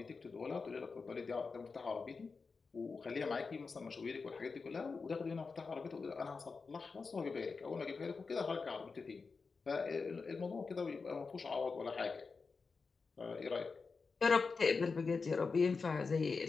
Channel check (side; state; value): right; quieter; 4.6 dB